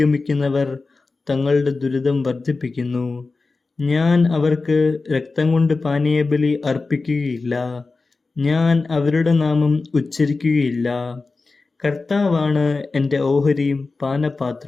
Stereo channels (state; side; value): quieter; right; 3.8 dB